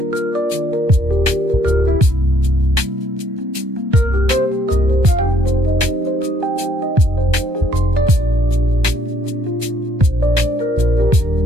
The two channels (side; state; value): left; late; 1.2 ms